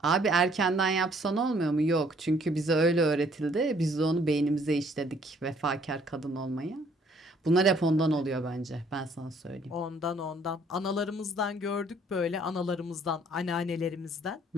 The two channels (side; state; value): both; normal; correlation 0.62